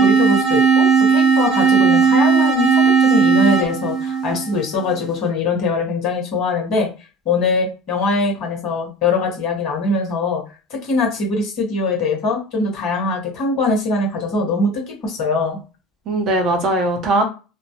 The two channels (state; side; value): normal; both; correlation 0.45